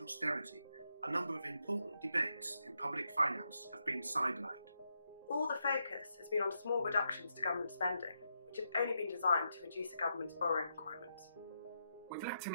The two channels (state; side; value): inverted; both; correlation -0.82